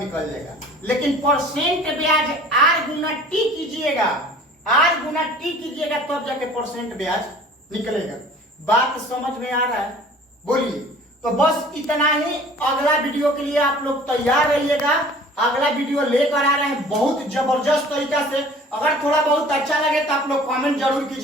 जाएगा। लेकिन परसेंट ब्याज R गुना T कीजिएगा, R गुना T कीजिएगा तब जाके परसेंट ब्याज निकलेगा। बात समझ में आ रहा है, बोलिए। तो बस इतना ही, अगला वीडियो के लिए आप लोग तैयार रहिएगा। अगला वीडियो लेकर आ रहे हैं बहुत जबरदस्त तरीका से। अगर थोड़ा बहुत अच्छा लगे तो आप लोग कमेंट जरूर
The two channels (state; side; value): normal; both; correlation 0.48